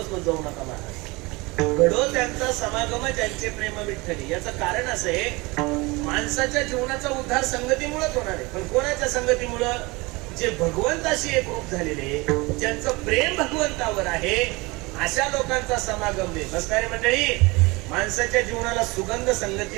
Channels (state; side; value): quieter; left; 24.3 dB